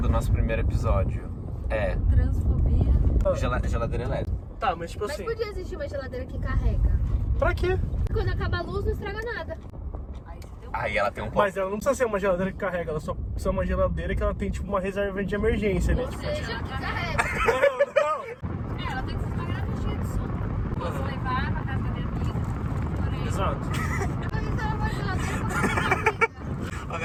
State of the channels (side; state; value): both; identical; correlation 1.00